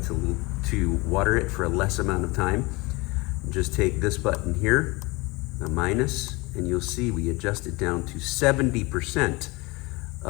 to water it for a less amount of time. Just take this button here, the minus, and you'll see we adjust it down to 70%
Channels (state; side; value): quieter; right; 24.7 dB